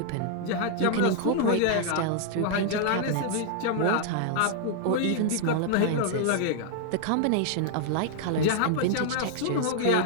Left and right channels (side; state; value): both; different; correlation -0.01